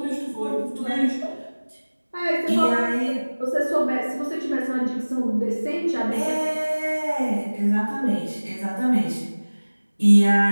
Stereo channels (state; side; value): inverted; both; correlation -1.00